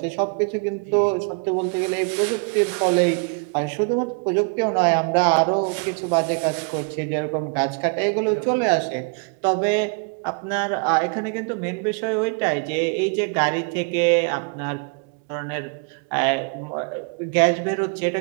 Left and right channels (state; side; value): quieter; left; 36.7 dB